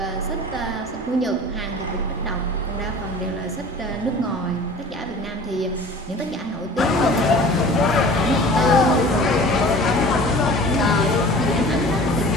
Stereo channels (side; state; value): both; normal; correlation 0.42